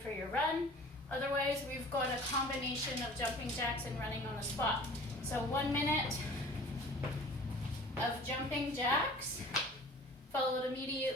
your run. Otherwise, we've got a combination of jumping jacks and running on the spot. So 1 minute of jumping jacks, followed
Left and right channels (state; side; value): normal; both; correlation 0.45